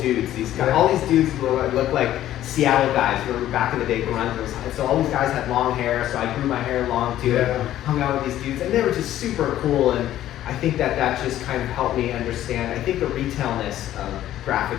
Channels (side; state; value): right; quieter; 12.9 dB